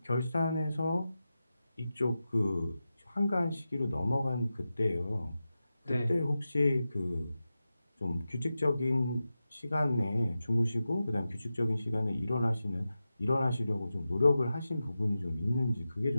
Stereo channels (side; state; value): both; inverted; correlation -0.92